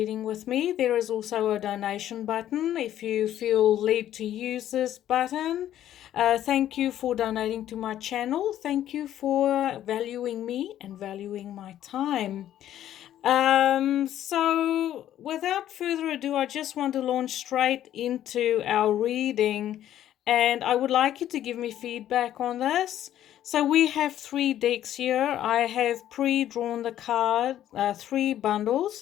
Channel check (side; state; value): right; quieter; 11.8 dB